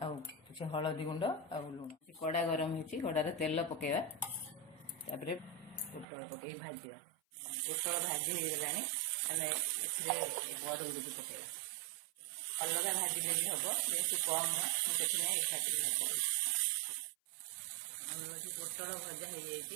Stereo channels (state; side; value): drops out; left; at 6.1 s